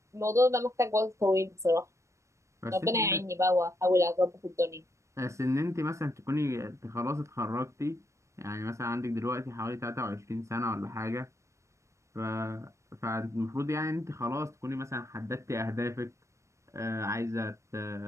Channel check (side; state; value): left; late; 0.14 ms